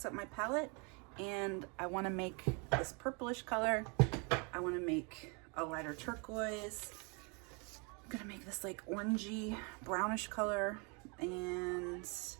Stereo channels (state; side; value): quieter; left; 32.9 dB